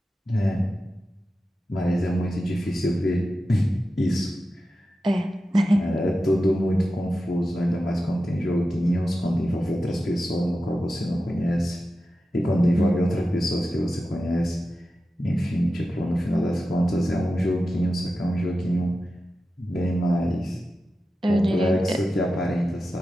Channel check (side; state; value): both; normal; correlation 0.92